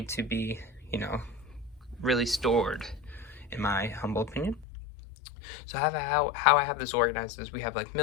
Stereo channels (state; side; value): drops out; right; at 4.7 s